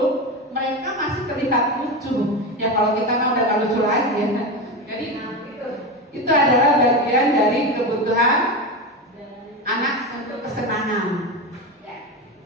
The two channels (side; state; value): both; normal; correlation 0.19